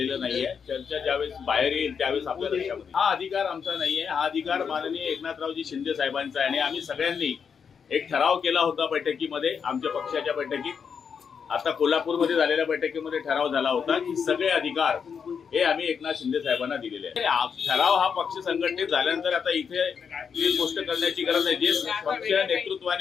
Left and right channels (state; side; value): quieter; right; 6.6 dB